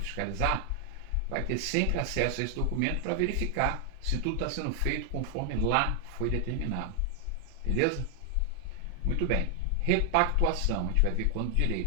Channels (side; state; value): both; different; correlation 0.00